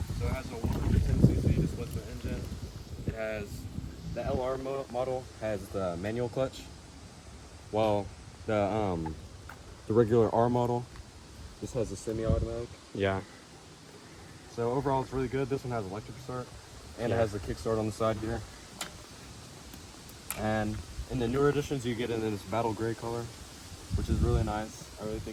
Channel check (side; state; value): both; identical; correlation 1.00